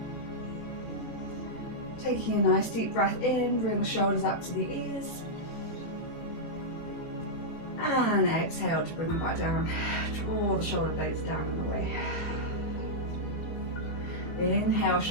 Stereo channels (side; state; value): right; late; 18 ms